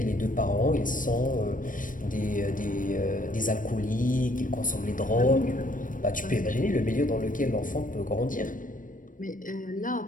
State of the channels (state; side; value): late; right; 0.39 ms